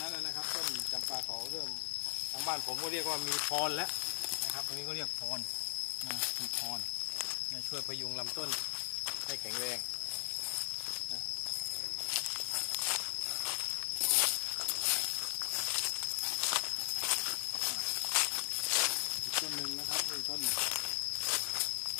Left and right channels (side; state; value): right; silent; 53 dB below the other